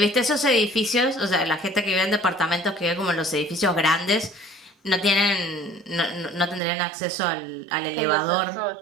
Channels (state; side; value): drops out; left; at 6.6 s